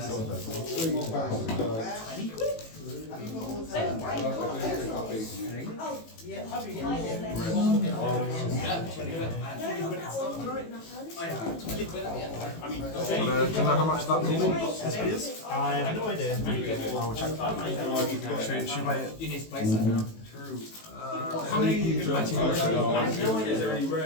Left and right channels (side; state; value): right; late; 18 ms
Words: Have you got all the... Oh, Yeah, happy my again. bad. No, not that one. Do you know how much that normal SP is? I have no idea. I will check. Should I? You need to place that now. How many are you going to place? Is there any